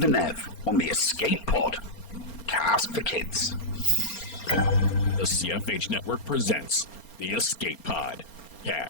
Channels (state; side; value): late; right; 4.3 ms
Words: Nev on the Escape Pod. Cast for Kids. The CFH Network presents the Escape Pod